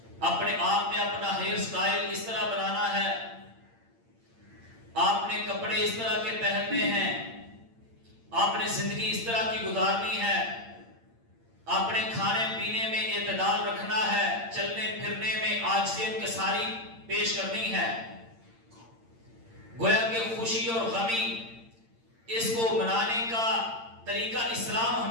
اپنے آپ میں اپنا ہیئر سٹائل اس طرح بنانا ہے، آپ نے کپڑے اس طرح کے پہننے ہیں، آپ نے زندگی اس طرح کی گزارنی ہے، آپ نے کھانے پینے میں اعتدال رکھنا ہے، چلنے پھرنے میں عاجزیت کے ساری پیش کرنی ہے۔ گویا کہ خوشی اور غمی اس کو منانے کا طریقہ اسلام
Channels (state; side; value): late; left; 8.8 ms